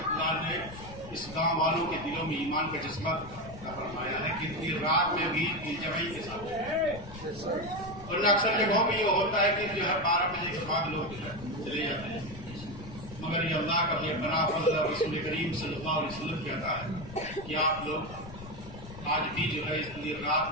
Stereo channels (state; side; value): noise; left; rumble, 14 dB below the sound